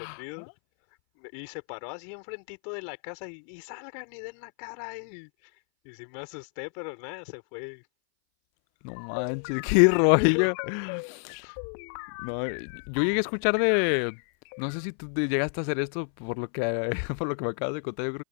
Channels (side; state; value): right; silent; 59 dB below the other